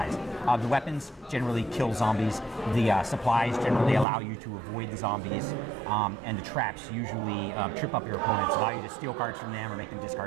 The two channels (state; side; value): drops out; left; at 4.0 s